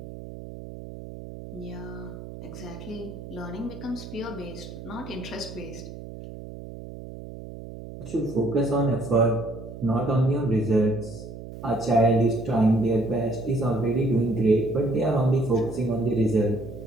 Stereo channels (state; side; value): noise; right; hum, 12 dB below the sound